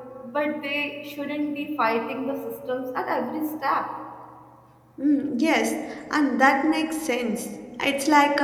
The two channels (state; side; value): identical; both; correlation 1.00